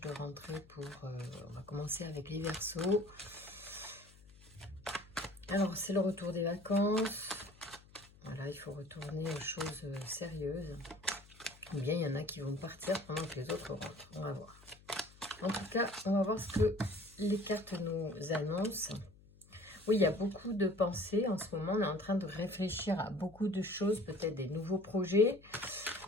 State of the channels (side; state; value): left; noise; hum, 24 dB below the sound